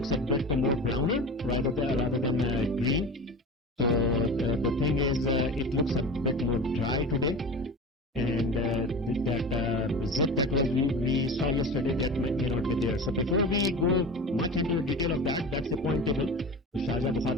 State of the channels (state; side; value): normal; both; correlation 0.32